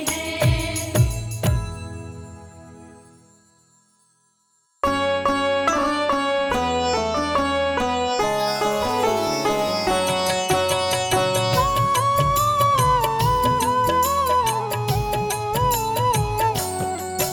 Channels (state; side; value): identical; both; correlation 1.00